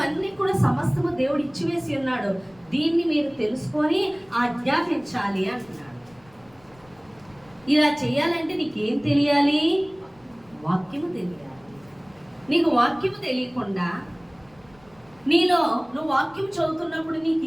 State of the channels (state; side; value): noise; left; rumble, 29 dB below the sound